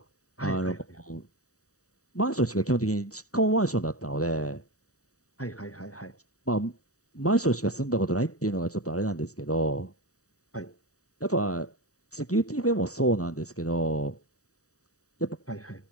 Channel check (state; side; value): late; right; 0.66 ms